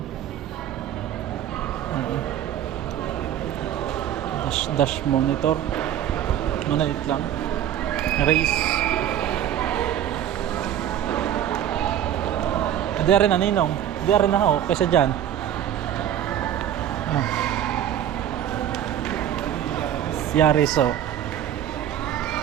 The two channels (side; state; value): left; quieter; 10.7 dB